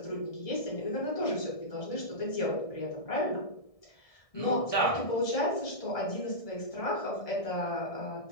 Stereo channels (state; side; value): late; right; 1.7 ms